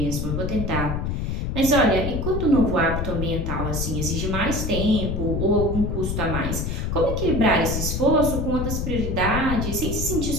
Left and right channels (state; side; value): noise; left; rumble, 2 dB below the sound